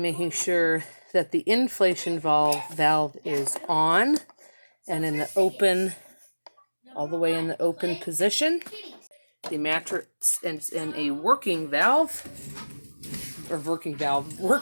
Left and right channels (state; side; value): inverted; both; correlation -1.00